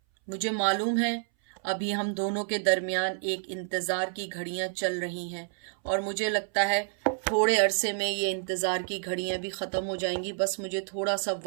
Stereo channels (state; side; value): silent; left; 58 dB below the other